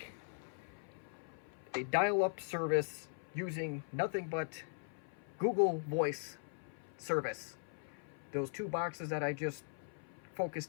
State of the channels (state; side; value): silent; right; 51 dB below the other